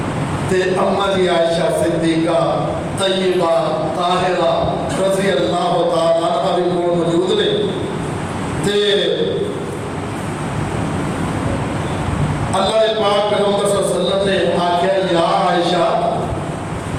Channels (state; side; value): identical; both; correlation 1.00